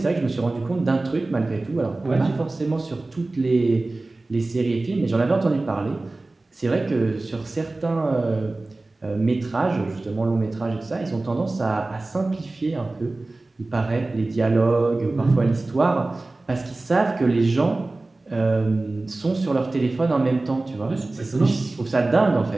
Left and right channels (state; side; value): quieter; left; 3.1 dB